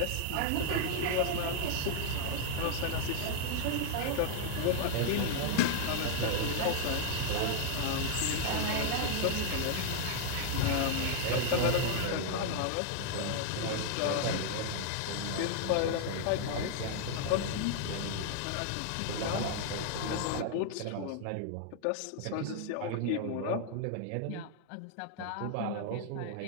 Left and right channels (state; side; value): different; both; correlation 0.00